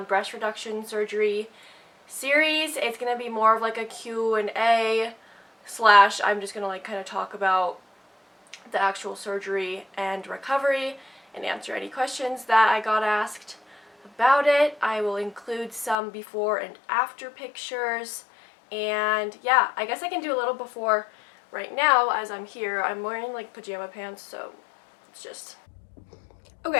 breast reduction surgery series. It's gonna be more of like a Q&A slash I'm just gonna like kind of talk about the actual surgery and recovery and answer any questions that I got asked about it. I will include some before and after pictures, and yeah, I guess I can do a little before right now as I'm here. I'm wearing like pajama pants, so it's just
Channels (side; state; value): right; drops out; at 16.0 s